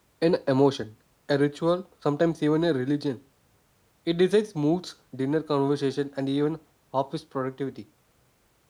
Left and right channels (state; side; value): identical; both; correlation 1.00